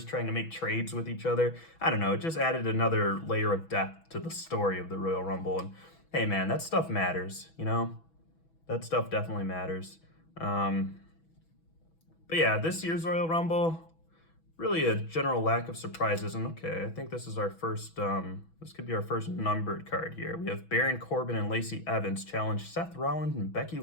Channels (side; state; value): right; late; 6.1 ms